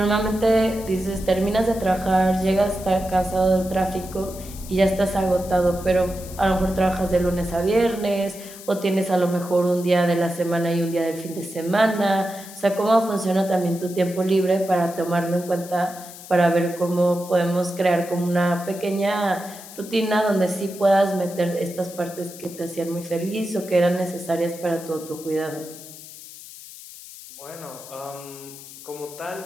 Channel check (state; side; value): noise; left; hiss, 16 dB below the sound